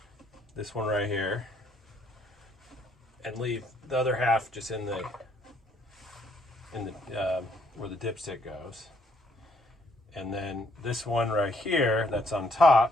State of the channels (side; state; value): both; normal; correlation 0.68